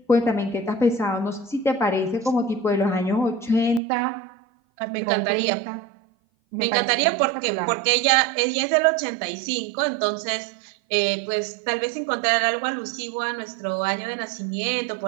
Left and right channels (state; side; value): drops out; left; at 3.8 s